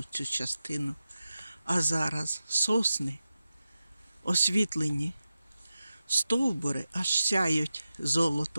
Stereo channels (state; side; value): inverted; both; correlation -0.92